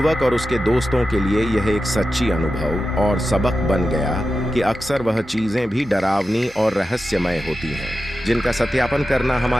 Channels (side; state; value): both; normal; correlation 0.92